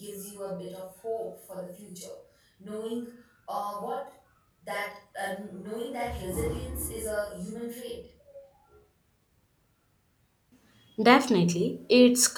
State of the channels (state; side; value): identical; both; correlation 1.00